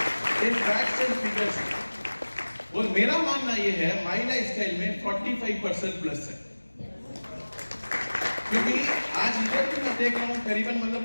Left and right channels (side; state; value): both; inverted; correlation -1.00